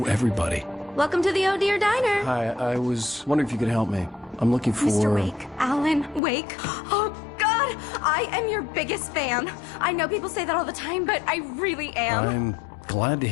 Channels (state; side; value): drops out; right; at 6.2 s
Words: everybody. Welcome to the Oh Dear Diner. Hi, I was wondering if you could help me. I'm looking for... Mr. Wake. Alan Wake. Oh, God! I am your biggest fan. I know people say that all the time, but I really am. I'm glad to